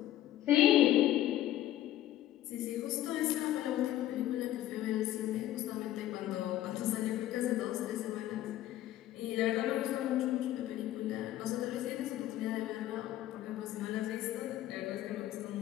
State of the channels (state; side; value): quieter; right; 13.7 dB